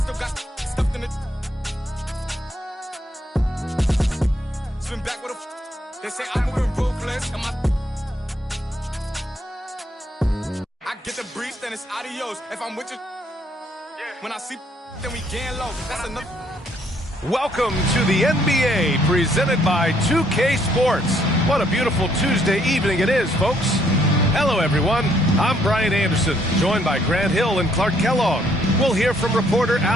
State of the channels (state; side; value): normal; both; correlation 0.68